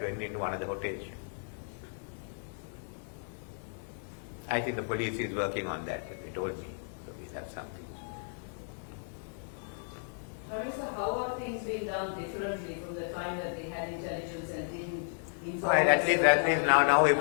went into one of the hotels. I think the police is working on that, they told me. So we'll have something. Prime Minister, how are things being done differently from the time that they had intelligence and didn't inform? Right, at least now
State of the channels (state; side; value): silent; right; digital silence